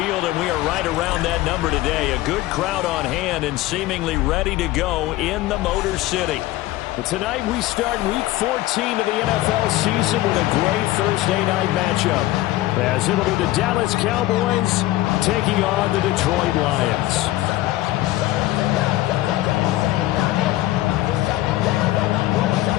and we are right around that number today. A good crowd on hand and seemingly ready to go in the Motor City. Tonight we start Week 14 of the NFL season with a great Thursday night matchup, as it'll be the Dallas Cowboys taking on the Detroit Lions.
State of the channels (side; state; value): right; quieter; 16.5 dB